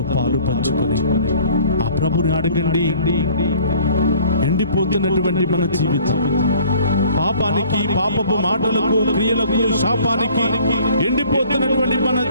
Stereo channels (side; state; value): both; inverted; correlation -0.53